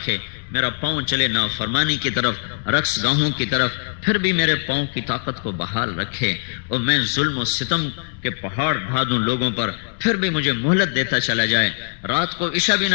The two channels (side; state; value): right; silent; digital silence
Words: میرا پاؤں چلے نافرمانی کی طرف، رقص گاہوں کی طرف پھر بھی میرے پاؤں کی طاقت کو بحال رکھے، اور میں ظلم و ستم کے پہاڑ ڈھا دوں لوگوں پر پھر بھی مجھے مہلت دیتا چلا جائے، رات کو عشاء بھی